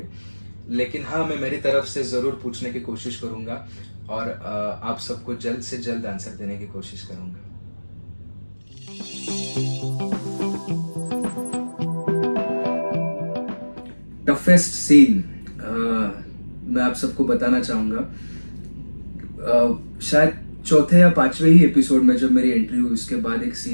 लेकिन हाँ, मैं मेरी तरफ से जरूर पूछने की कोशिश करूंगा, और आप सबको जल्द से जल्द आंसर देने की कोशिश करूंगा। टफेस्ट सीन मैं आप सबको बताना चाहूंगा, शायद चौथे या पांचवे ही एपिसोड में जब मेरी एंट्री हुई, उसके बाद एक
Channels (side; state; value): both; inverted; correlation -1.00